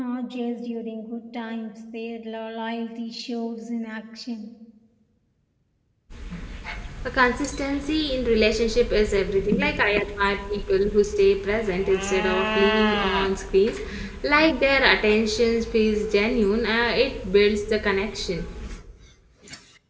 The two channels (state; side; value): identical; both; correlation 1.00